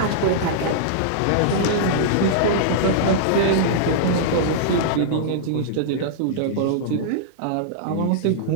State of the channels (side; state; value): both; different; correlation -0.02